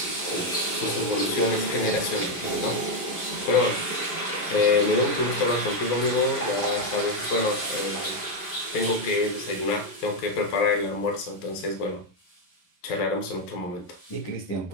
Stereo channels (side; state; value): right; late; 11 ms